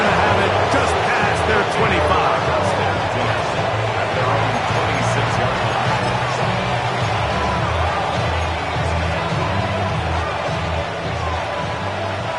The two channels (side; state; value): both; identical; correlation 1.00